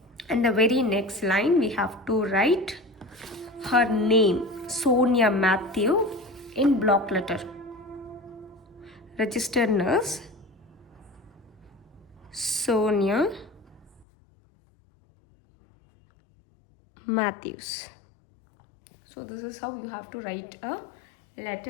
And the very next line we have to write her name, Sonia Matthew, in block letter. Registered nurse Sonia Matthews. So this is how you have to write a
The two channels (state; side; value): drops out; right; at 14.1 s